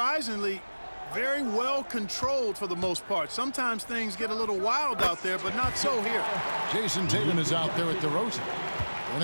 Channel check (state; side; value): inverted; both; correlation -1.00